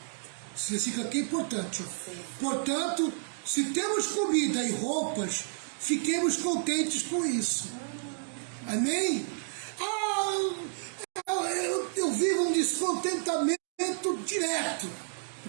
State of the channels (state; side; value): silent; left; digital silence